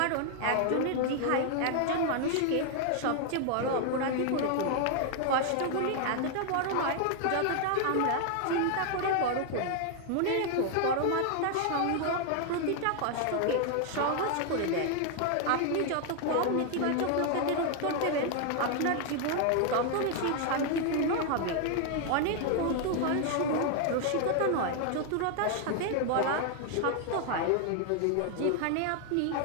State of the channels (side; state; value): both; different; correlation 0.00